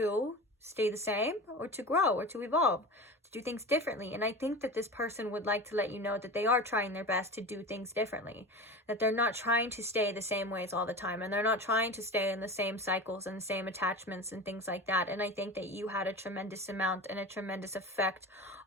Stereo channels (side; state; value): both; normal; correlation 0.31